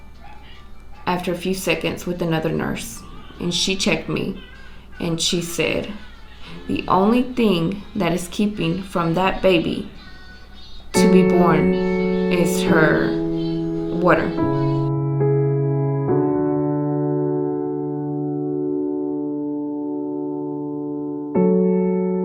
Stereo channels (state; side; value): identical; both; correlation 1.00